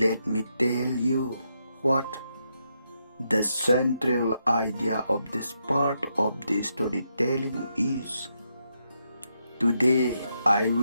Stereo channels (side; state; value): both; inverted; correlation -0.81